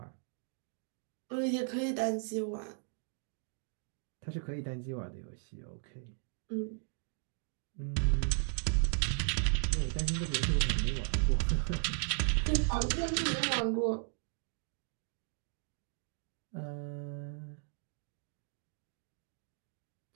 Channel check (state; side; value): silent; left; 54 dB below the other